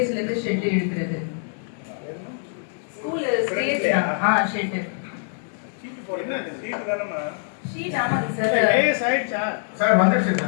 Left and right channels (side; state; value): right; silent; 63 dB below the other